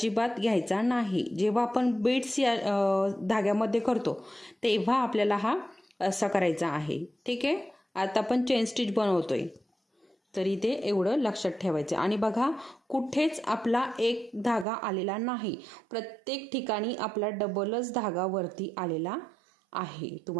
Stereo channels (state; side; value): drops out; left; at 14.7 s